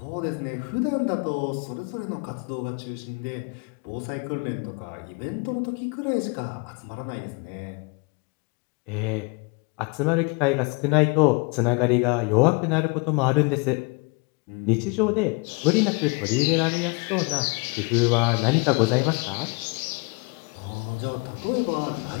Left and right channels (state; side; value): quieter; right; 30.6 dB